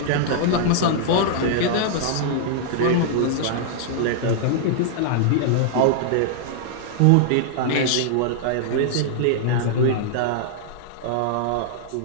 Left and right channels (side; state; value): both; different; correlation -0.01